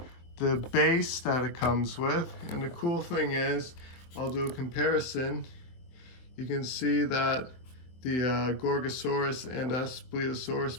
the base that it comes with. And the cool thing is, I'll do a comparison. You can see that the Gorgosaurus and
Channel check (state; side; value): late; right; 23 ms